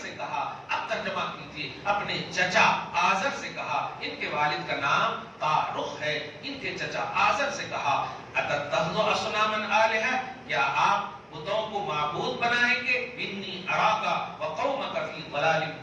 سے کہا، اب ترجمہ کیجئے، اپنے چچا آزر سے کہا، ان کے والد کا نام تارخ ہے، ان کے چچا آزر سے کہا اتتخذوا اصناما آلہہ، کیا آپ بتوں کو معبود بنائیں گے؟ انی اراک وقومک فی ضلال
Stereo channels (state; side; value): identical; both; correlation 1.00